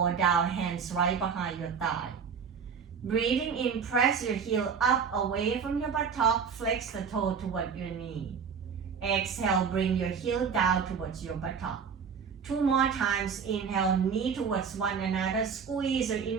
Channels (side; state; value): left; quieter; 6.5 dB